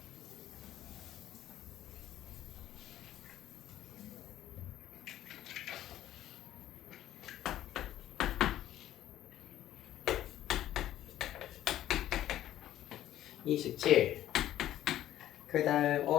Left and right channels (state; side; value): quieter; right; 12.8 dB